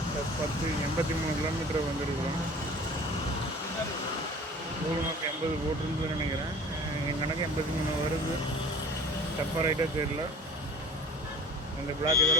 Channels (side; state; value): both; normal; correlation 0.44